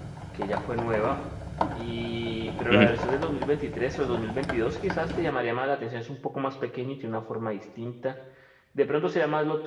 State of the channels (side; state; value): both; identical; correlation 1.00